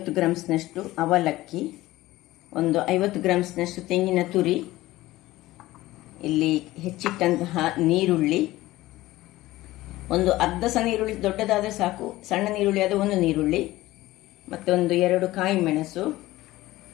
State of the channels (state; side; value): quieter; right; 17.3 dB